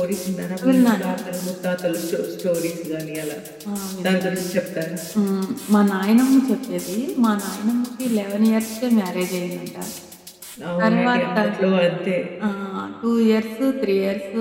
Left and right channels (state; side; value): identical; both; correlation 1.00